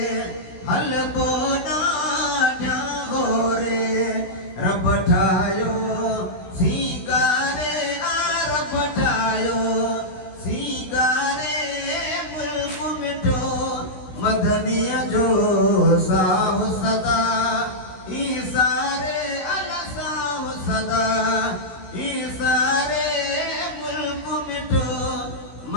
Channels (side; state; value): right; late; 16 ms